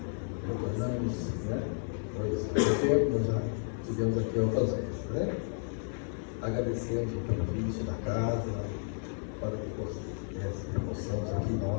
Retornamos, né? Pois há tempo nós já estivemos aqui outras vezes, né? Agradecemos o convite da casa, para que possamos aqui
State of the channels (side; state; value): right; silent; 56 dB below the other